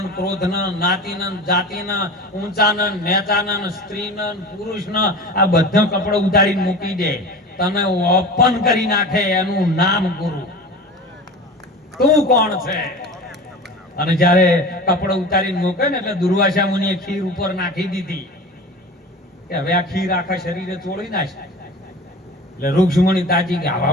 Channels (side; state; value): both; normal; correlation 0.34